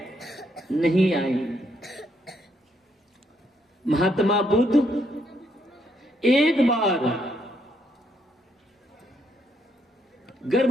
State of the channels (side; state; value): both; normal; correlation 0.74